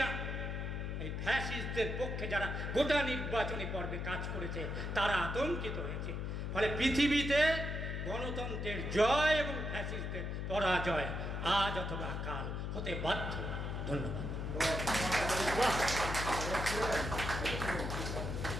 এই ফ্যাসিস্টদের পক্ষে, যারা গোটা নির্বাচনী পর্বে কাজ করেছে, তারা আতঙ্কিত হয়েছে। ফলে পৃথিবীতে গণতন্ত্রের জয় এবং ফ্যাসিস্টদের পরাজয় আজ অথবা কাল হতে বাধ্য। ধন্যবাদ।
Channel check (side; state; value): left; noise; hum, 3 dB below the sound